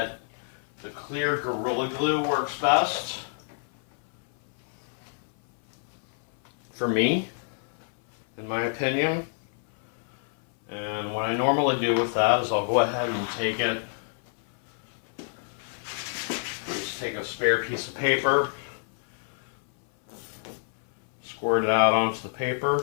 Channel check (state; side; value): silent; right; 56 dB below the other